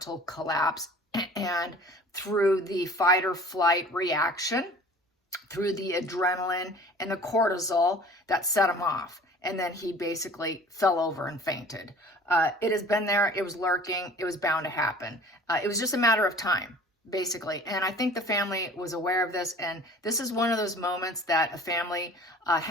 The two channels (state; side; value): normal; both; correlation 0.46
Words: collapse, and through the fight or flight reaction, through the adrenaline and the cortisol that set him off. And then he basically fell over and fainted. It has been there. It was lurking. It was bound to happen. It was just a matter of time, basically. And I think the family was aware of this. And this is one of those moments that a family